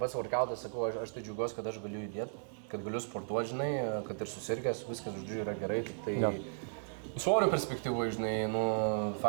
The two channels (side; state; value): left; silent; digital silence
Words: workoutas, sakau, aš tai džiaugiuosi, kad aš galiu judėti, kad galiu sportuoti, žinai, kad ir susirgęs, viskas, žodžiu, yra gerai, tik tai... Ja. Svorio perspektyvoje, žinai,